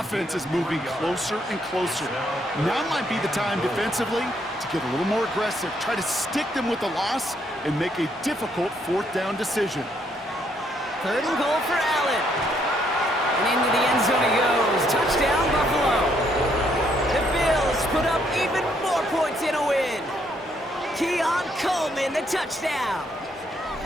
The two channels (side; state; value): both; normal; correlation 0.72